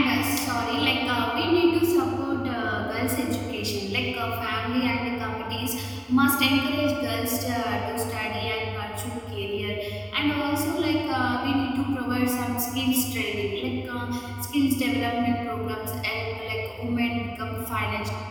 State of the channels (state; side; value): identical; both; correlation 1.00